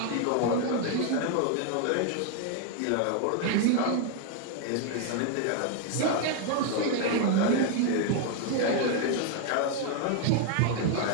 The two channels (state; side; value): different; both; correlation 0.00